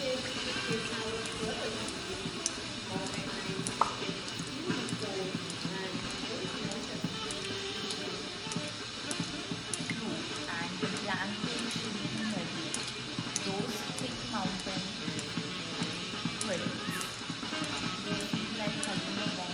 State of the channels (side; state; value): both; identical; correlation 1.00